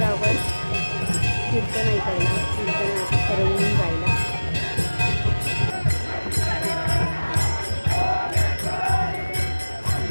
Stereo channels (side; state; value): both; inverted; correlation -1.00